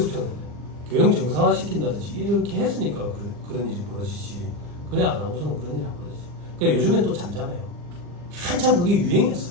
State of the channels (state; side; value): late; left; 40 ms